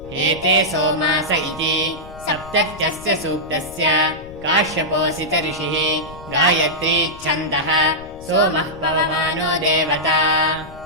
एते सोमास इति सप्तत्यस्य सूक्तस्य काश्यपोऽसित ऋषिः गायत्री छन्दः सोमः पवमानो देवता।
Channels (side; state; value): left; noise; rumble, 17 dB below the sound